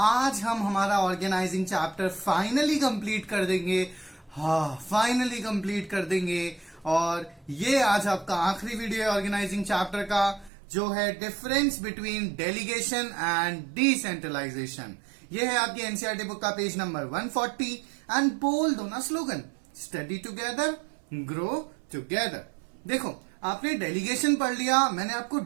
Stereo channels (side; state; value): left; drops out; at 10.5 s